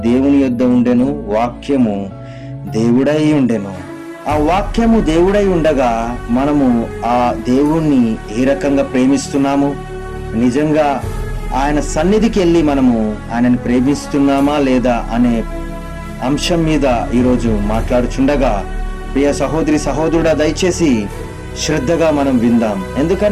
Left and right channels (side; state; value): both; identical; correlation 1.00